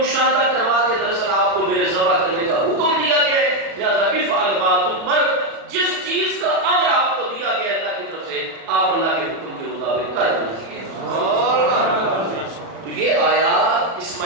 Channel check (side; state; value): left; late; 36 ms